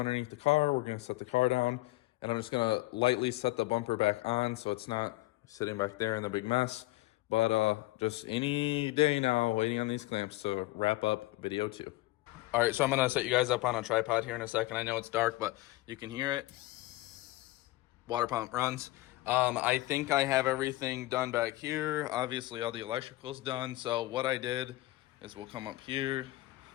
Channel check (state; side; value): quieter; right; 19.2 dB